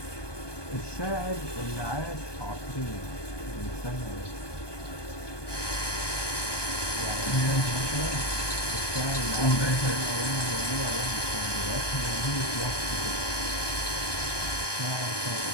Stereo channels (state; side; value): late; right; 1.2 ms